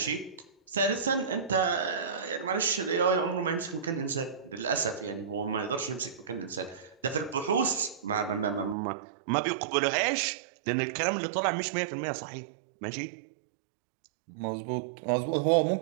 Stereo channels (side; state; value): left; drops out; at 8.8 s